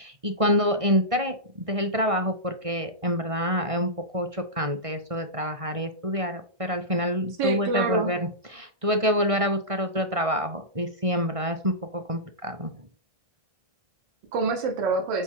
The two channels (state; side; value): late; left; 1.6 ms